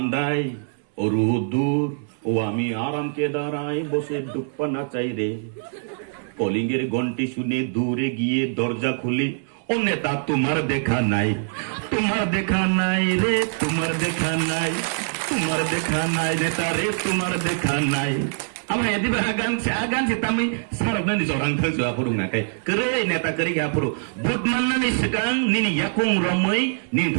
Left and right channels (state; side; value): silent; left; digital silence